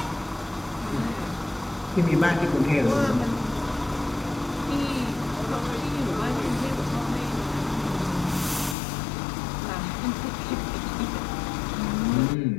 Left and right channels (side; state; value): right; drops out; at 8.8 s